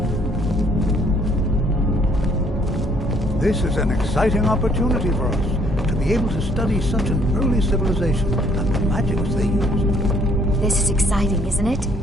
This is an exciting opportunity for us to be able to study such an early civilization and the magics they used. This is exciting, isn't it?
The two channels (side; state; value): both; normal; correlation 0.63